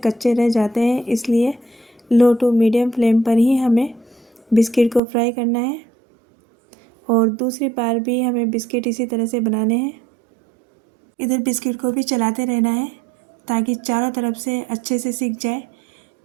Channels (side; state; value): left; drops out; at 5.0 s